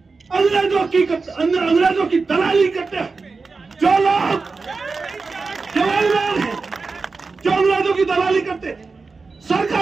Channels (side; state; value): left; quieter; 4.3 dB